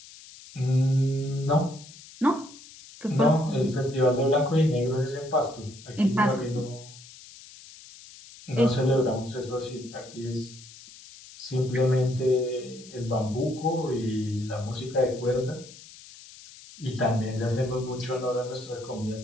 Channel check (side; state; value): left; noise; hiss, 19 dB below the sound